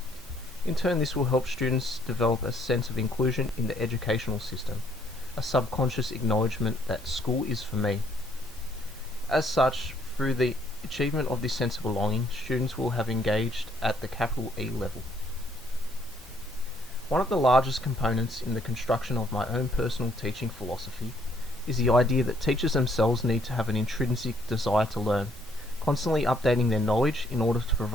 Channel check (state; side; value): normal; both; correlation 0.67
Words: In turn, this will help students develop a sense of inclusion in the educational system, a subconscious acknowledgement that school is for me. As such, through the achievement of this sense of belonging, students will have engaged at the capital E level. One of the largest components in the construction of my own personal teaching philosophy is the idea that teachers themselves need to have an intrinsic desire to learn, constantly updating their knowledge in order to